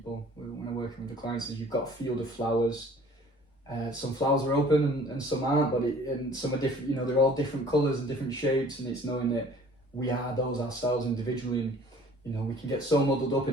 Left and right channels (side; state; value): both; normal; correlation 0.51